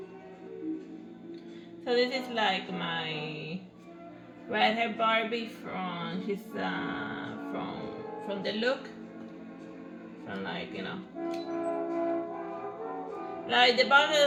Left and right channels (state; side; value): identical; both; correlation 1.00